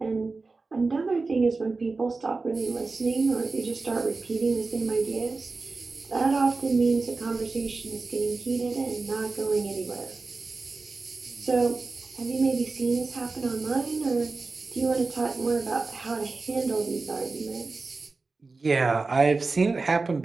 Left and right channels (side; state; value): left; quieter; 3.9 dB